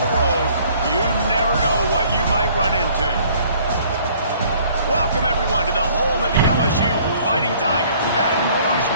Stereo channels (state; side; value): inverted; both; correlation -0.57